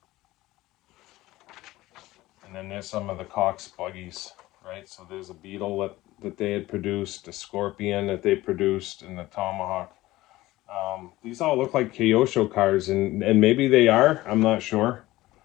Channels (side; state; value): right; quieter; 17.6 dB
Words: And then there's some of the Cox buggies, right? So there's a Beetle that they had produced, a Scorpion that they produced, and the Tomahawk. These all look like Kyosho cars, and maybe they are, I'm not sure.